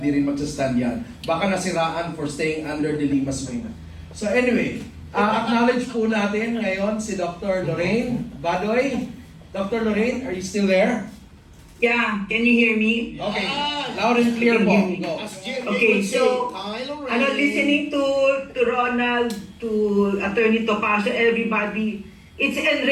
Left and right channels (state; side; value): identical; both; correlation 1.00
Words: rin magsastand yan. Baka nasiraan for staying under the Lima's wing. So anyway, acknowledge po natin ngayon si Dr. Lorraine Badoy. Dr. Lorraine, are you still there? Yeah, can you hear me? Okay, loud and clear po. Go. As Jimmy Okay, would say, so, Kylo listening to Ronald, to Attorney Topacio, everybody, it's